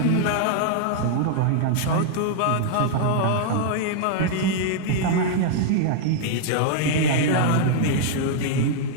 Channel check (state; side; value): different; both; correlation -0.01